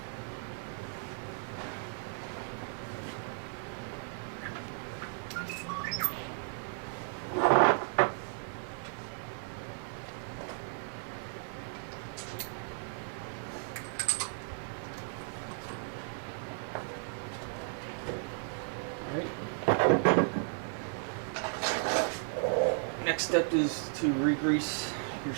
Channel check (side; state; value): left; silent; 55 dB below the other